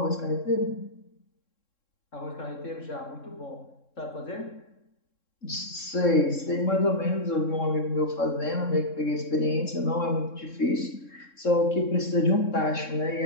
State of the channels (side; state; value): right; late; 3.7 ms